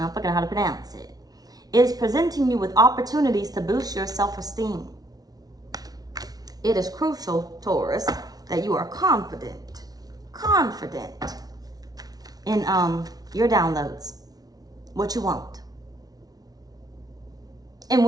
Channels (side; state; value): left; late; 0.19 ms